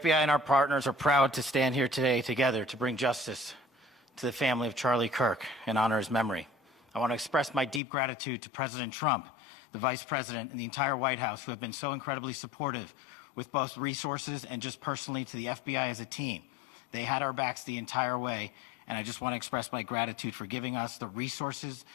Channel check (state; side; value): drops out; right; at 7.8 s